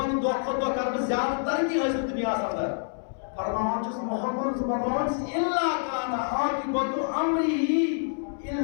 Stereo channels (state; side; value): silent; right; 60 dB below the other